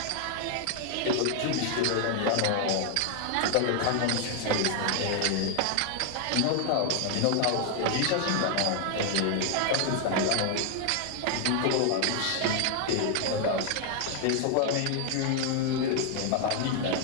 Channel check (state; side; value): different; both; correlation 0.00